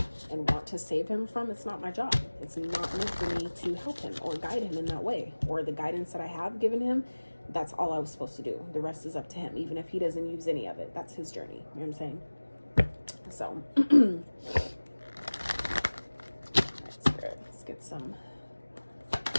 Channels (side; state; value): both; inverted; correlation -1.00